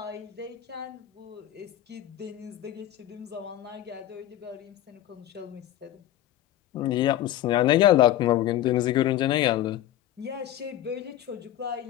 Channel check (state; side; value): quieter; right; 12.8 dB